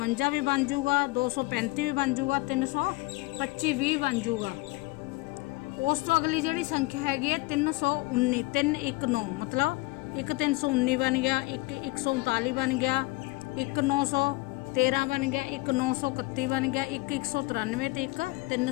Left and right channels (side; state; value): right; quieter; 22.8 dB